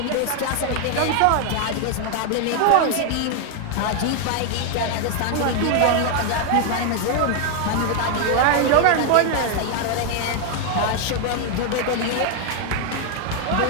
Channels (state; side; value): different; both; correlation 0.00